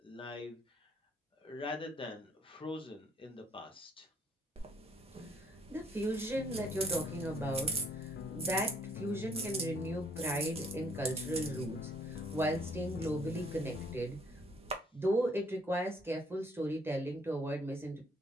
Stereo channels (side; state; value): both; normal; correlation 0.65